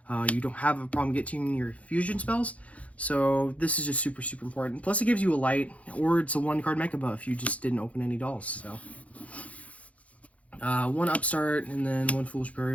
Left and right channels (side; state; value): right; late; 0.066 ms